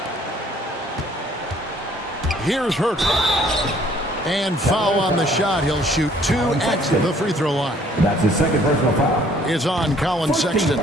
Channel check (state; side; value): normal; both; correlation 0.60